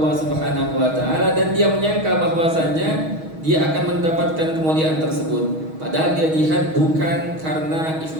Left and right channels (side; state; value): left; late; 6.3 ms